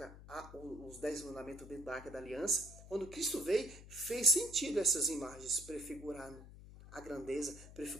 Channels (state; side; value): noise; left; hum, 16 dB below the sound